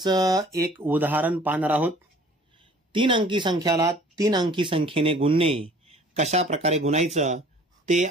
एक उदाहरण पाहणार आहोत। 3 अंकी संख्याला 3 अंकी संख्येने गुणणे कशा प्रकारे गुणायचं ते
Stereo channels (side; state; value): both; normal; correlation 0.51